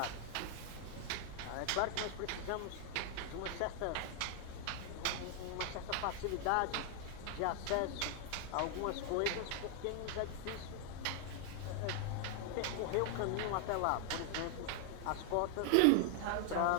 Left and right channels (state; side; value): different; both; correlation 0.00